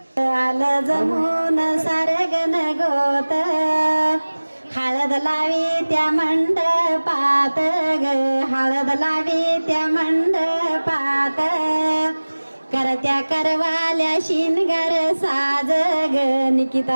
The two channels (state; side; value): inverted; both; correlation -1.00